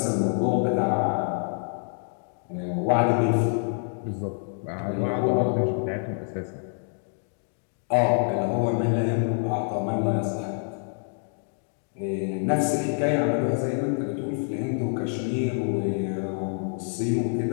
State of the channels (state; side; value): silent; right; 60 dB below the other